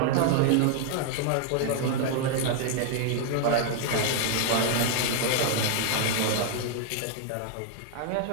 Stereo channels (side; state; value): both; different; correlation 0.00